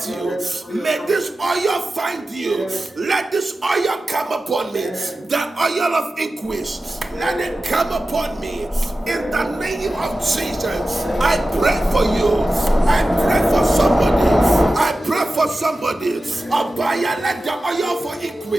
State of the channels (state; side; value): normal; both; correlation 0.94